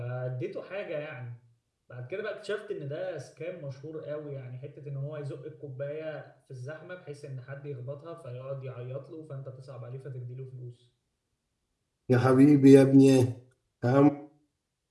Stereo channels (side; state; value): both; identical; correlation 1.00